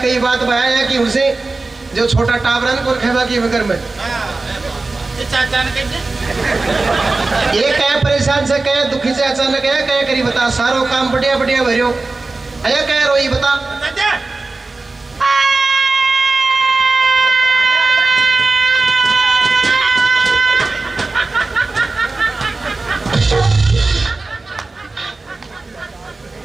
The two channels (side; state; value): left; quieter; 3.5 dB